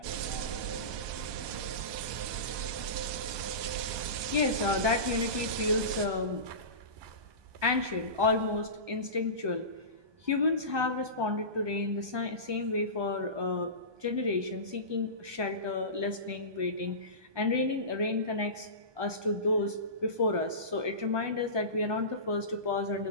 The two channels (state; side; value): late; left; 1.2 ms